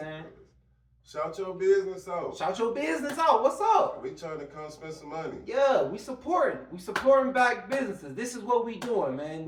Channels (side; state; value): both; identical; correlation 1.00